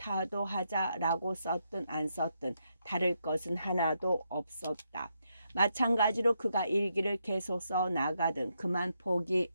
썼든 안 썼든 다를 것은 하나도 없었다. 마찬가지로 그가 일기를 계속 써 나가든 그만 포기하든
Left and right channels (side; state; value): both; inverted; correlation -0.80